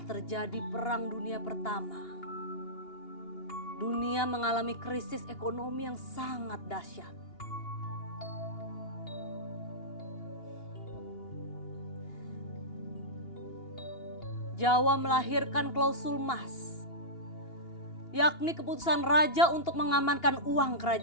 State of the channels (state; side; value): late; right; 2.8 ms